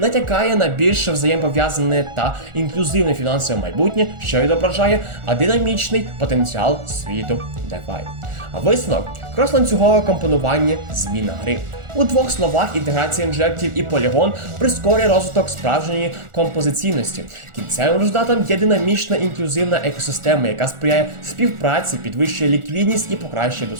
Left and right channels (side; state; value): left; late; 1.4 ms